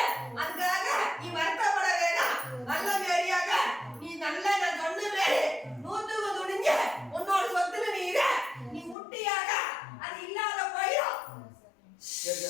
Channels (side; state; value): right; drops out; at 9.0 s